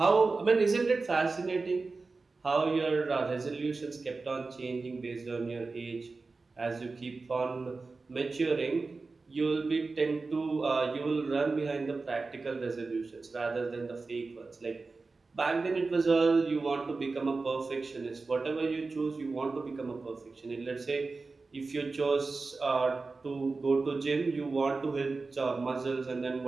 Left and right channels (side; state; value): left; quieter; 3.9 dB